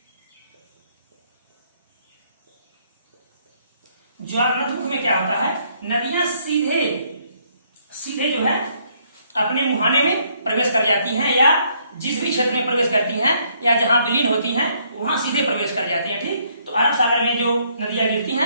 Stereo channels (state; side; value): inverted; both; correlation -0.69